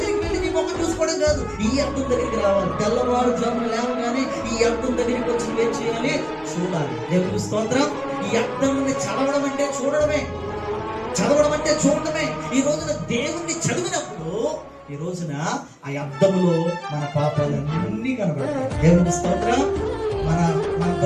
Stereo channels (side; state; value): both; identical; correlation 1.00